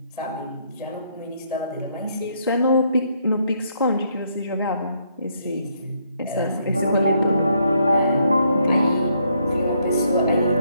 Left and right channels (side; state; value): both; inverted; correlation -0.72